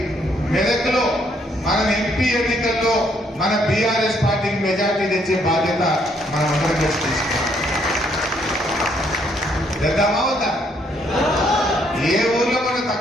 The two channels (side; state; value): both; normal; correlation 0.70